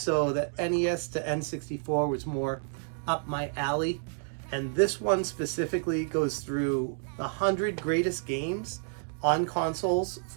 the NES to N64 was more up my alley. And this one specifically goes through the 100 greatest games on consoles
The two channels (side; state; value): left; silent; 58 dB below the other